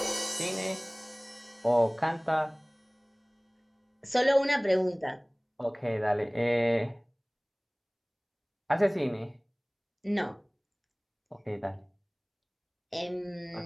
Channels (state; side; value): identical; both; correlation 1.00